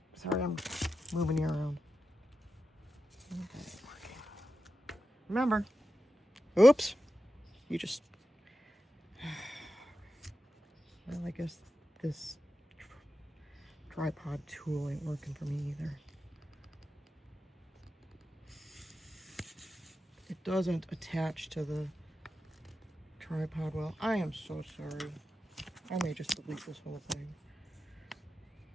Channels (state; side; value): normal; both; correlation 0.90